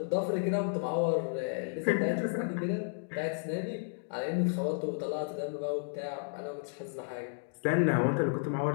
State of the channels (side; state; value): right; silent; digital silence